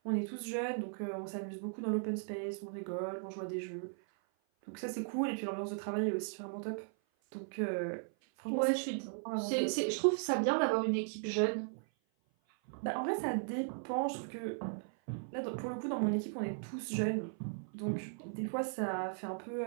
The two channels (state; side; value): silent; left; 53 dB below the other